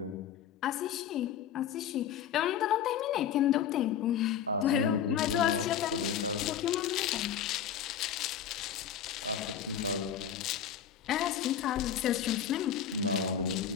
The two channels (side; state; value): right; quieter; 8.7 dB